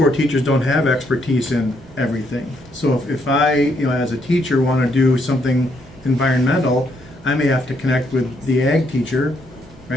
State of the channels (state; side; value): normal; both; correlation 0.73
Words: teachers don't have expertise in everything. So if I, as a teacher, want to do something environmental, I may have to connect with the ag teacher,